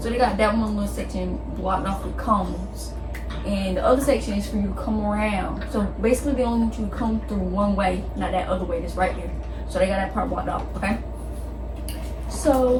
So they got that one little section blocked off with cones, and the other section is for you to come around. So basically they only want you to come through one way, not that other way that's right there. So they got that part blocked off, okay?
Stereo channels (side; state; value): both; identical; correlation 1.00